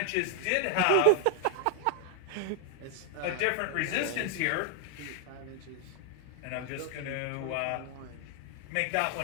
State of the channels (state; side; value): different; both; correlation 0.00